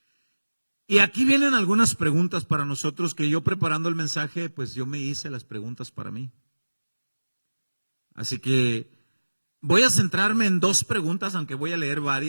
Y aquí vienen algunas preguntas para nosotros que yo preparando el mensaje, pues yo me hice las preguntas para mí. Así que voy a centrarme en dos preguntas, aunque voy a leer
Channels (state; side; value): inverted; both; correlation -1.00